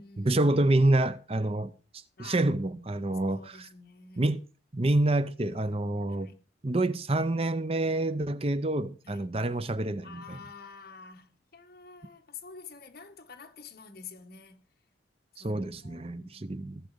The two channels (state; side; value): normal; both; correlation 0.76